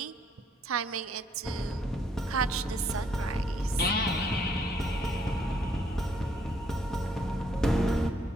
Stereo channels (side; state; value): both; normal; correlation 0.68